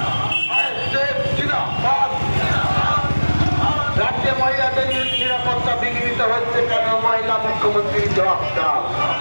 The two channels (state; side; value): inverted; both; correlation -1.00